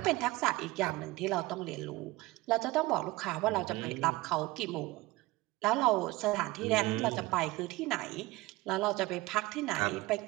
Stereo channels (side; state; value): left; quieter; 20.3 dB